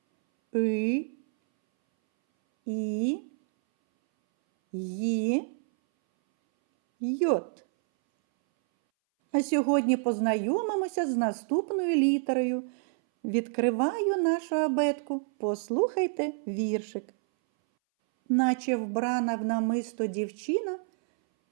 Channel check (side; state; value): left; silent; 59 dB below the other